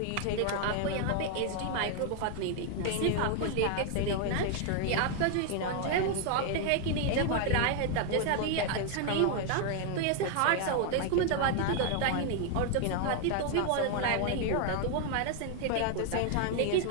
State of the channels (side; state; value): both; different; correlation 0.00